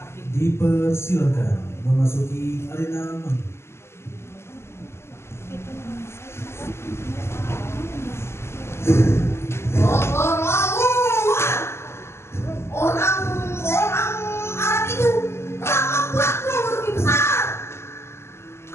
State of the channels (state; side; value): late; right; 0.12 ms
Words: dipersilakan memasuki arena manggung. Orang-orang Arab itu telah membuatku rugi besar.